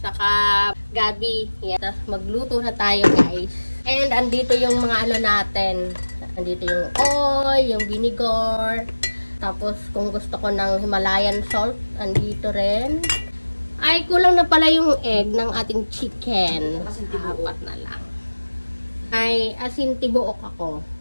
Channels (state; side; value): inverted; both; correlation -1.00